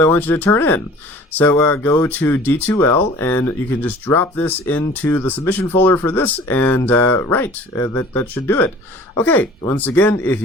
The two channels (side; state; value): both; normal; correlation 0.47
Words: I want you to turn in. So go to D2L, and you can just drop this into the submission folder for this, and that should do it. Okay, once again, if